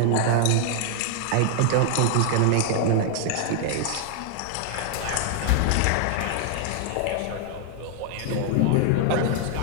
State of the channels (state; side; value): different; both; correlation 0.00